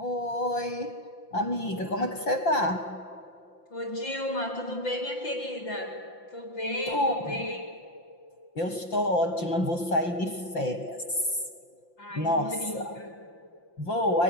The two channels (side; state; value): right; late; 5.8 ms